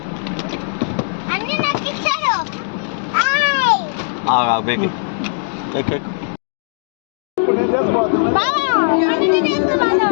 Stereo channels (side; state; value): right; silent; digital silence